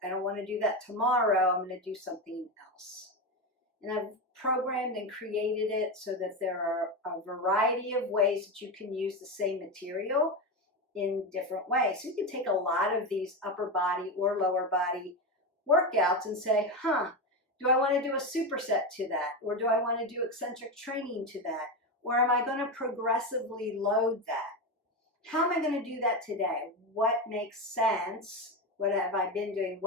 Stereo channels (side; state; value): both; normal; correlation 0.16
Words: I don't want to do that tomorrow. I'm going to do something else. And I've programmed and created it so that there are a variety of ways that you can use the same material in different ways. So you can take a lot of these upper body or lower body workouts and say, do I want to do a superset to that? Or do I want to do eccentric training to that? Or am I going to progressively load that? How am I going to do that today? What makes sense? What have I been doing?